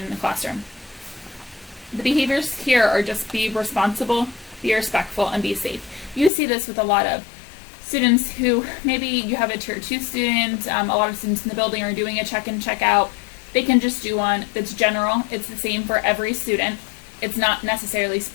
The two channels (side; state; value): right; drops out; at 6.3 s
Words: in the classroom. The behaviors here are just be responsible, be respectful, and be safe. You see this with a lot of students who, maybe you have a tier 2 student, a lot of students in the building are doing a check-in, check-out. They can just do one that's general. It's the same for every student. It's not necessarily